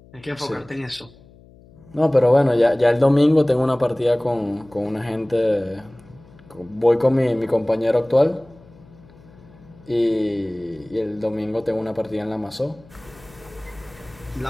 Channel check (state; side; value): noise; left; hum, 25 dB below the sound